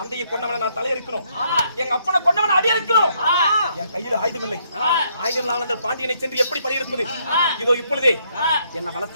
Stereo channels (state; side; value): inverted; both; correlation -0.72